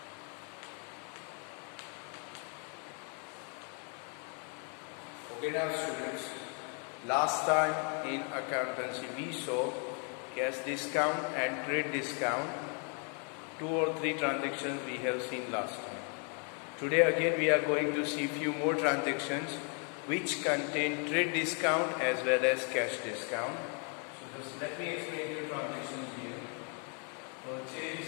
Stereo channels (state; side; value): quieter; right; 39.2 dB